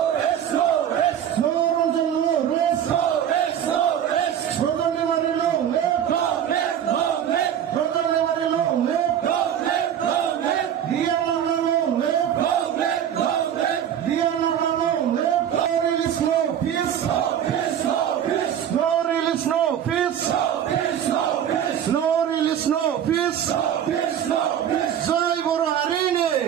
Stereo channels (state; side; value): quieter; left; 9.6 dB